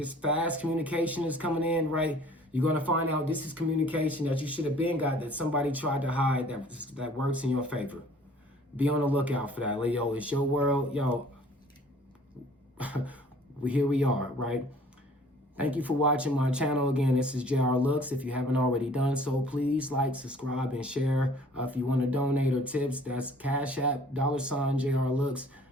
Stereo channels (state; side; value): normal; both; correlation 0.53